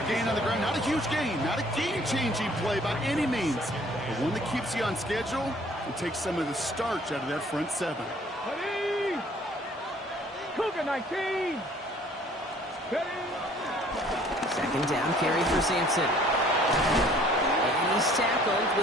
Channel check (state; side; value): normal; both; correlation 0.56